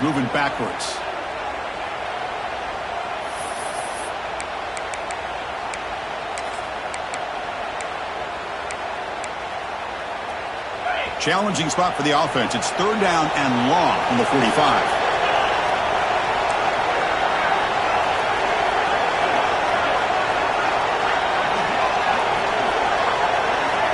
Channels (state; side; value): identical; both; correlation 1.00